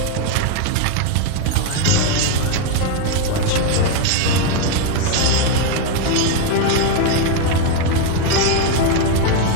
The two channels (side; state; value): both; different; correlation 0.01